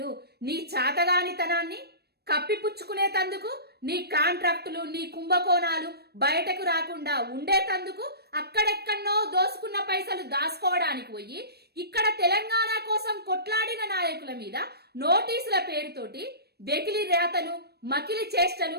నీ చాతగానితనాన్ని కప్పిపుచ్చుకునేతందుకు, నీ కాంట్రాక్టులు, నీ కుంభకోణాలు బయటకు రాకుండా ఉండేతందుకు, అక్కడెక్కడనో దోసుకున్న పైసలు దాచుకోవడానికి పోయి ఇక్కడ తెలంగాణ కోసం కొట్లాడిన నాయకుల మీద నోటీసుల పేరుతోటి వెకిలి రేతలు, మకిలి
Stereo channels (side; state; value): left; late; 0.47 ms